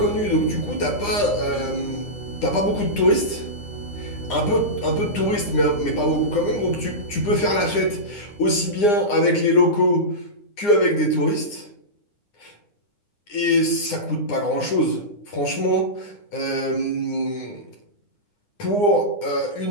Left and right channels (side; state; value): right; late; 9.8 ms